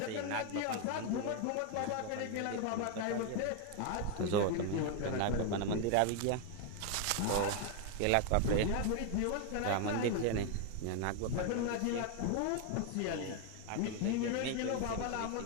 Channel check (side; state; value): both; different; correlation 0.01